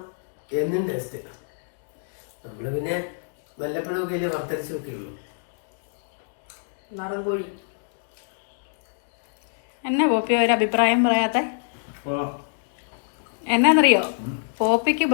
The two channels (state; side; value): silent; right; digital silence